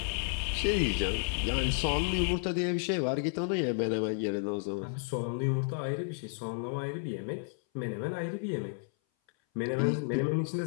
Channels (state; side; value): silent; right; 56 dB below the other